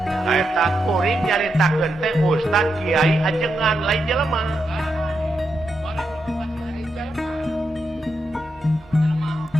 Saeta kuring nyaritakeun teh ustad kiai ajengan lain jelema.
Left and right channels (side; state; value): both; normal; correlation 0.84